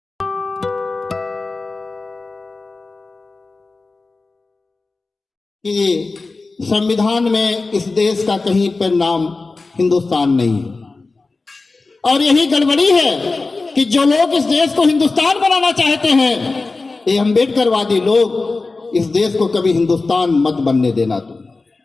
कि संविधान में इस देश का कहीं पर नाम हिंदुस्तान नहीं है, और यही गड़बड़ी है कि जो लोग इस देश को हिंदुस्तान बनाना चाहते हैं, ये अम्बेडकरवादी लोग इस देश को कभी हिंदुस्तान मत बनने देना। तुम,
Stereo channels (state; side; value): quieter; right; 3.7 dB